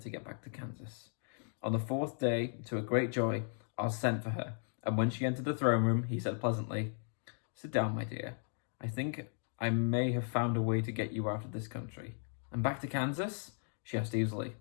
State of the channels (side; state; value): right; silent; 54 dB below the other